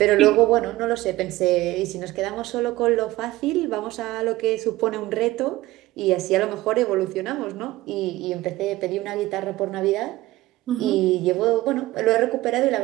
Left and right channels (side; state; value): left; quieter; 17.8 dB